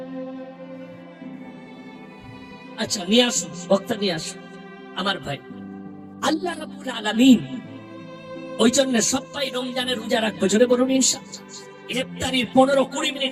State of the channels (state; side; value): identical; both; correlation 1.00